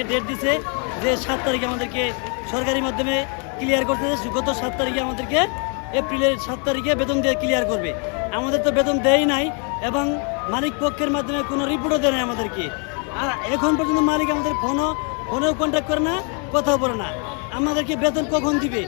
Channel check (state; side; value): quieter; right; 38.2 dB